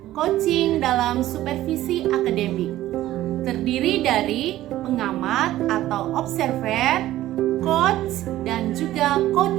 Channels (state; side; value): quieter; left; 14.6 dB